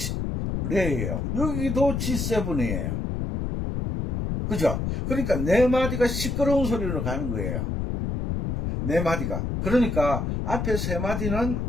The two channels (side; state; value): left; noise; rumble, 2 dB below the sound